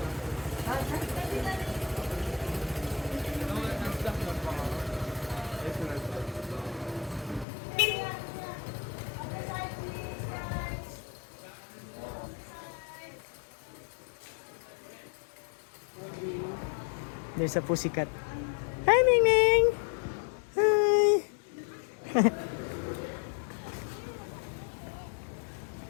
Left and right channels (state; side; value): drops out; right; at 7.5 s